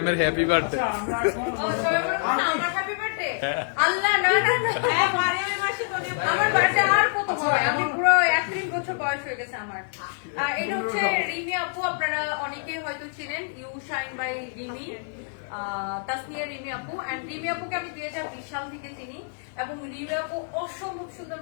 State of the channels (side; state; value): right; silent; 61 dB below the other